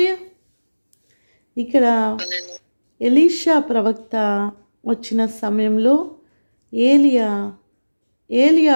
ఇక్కడ ఎలీషా ప్రవక్త వచ్చిన సమయంలో ఏలియా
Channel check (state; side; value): inverted; both; correlation -1.00